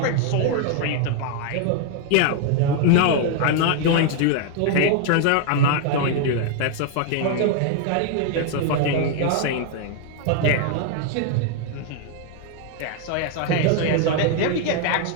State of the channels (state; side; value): different; both; correlation 0.00